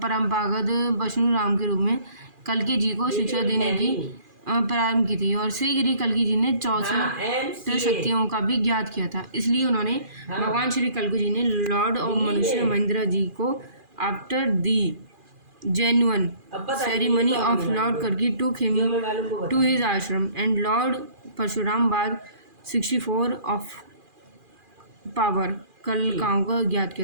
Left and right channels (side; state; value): left; late; 2.4 ms